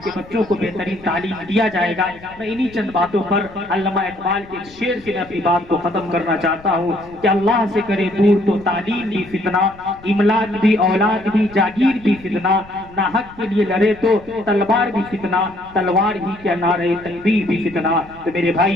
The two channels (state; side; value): noise; left; rumble, 22 dB below the sound